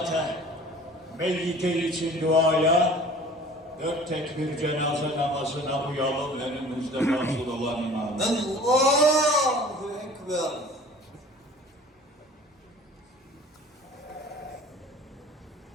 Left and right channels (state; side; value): normal; both; correlation 0.46